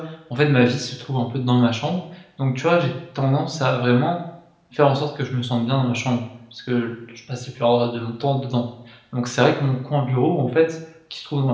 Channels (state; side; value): identical; both; correlation 1.00